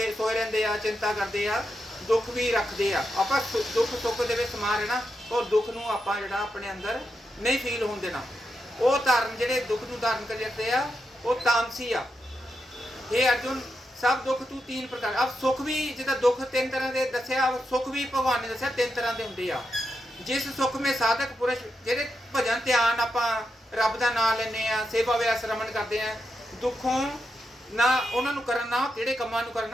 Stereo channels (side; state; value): both; normal; correlation 0.86